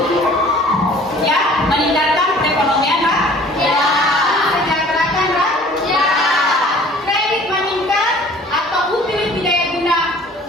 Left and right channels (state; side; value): normal; both; correlation 0.50